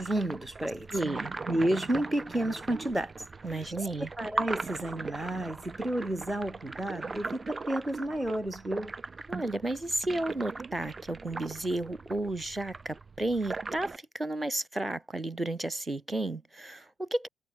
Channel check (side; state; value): both; normal; correlation 0.90